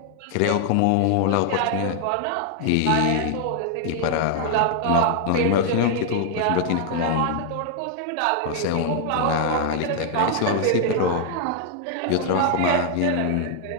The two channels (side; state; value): both; different; correlation 0.00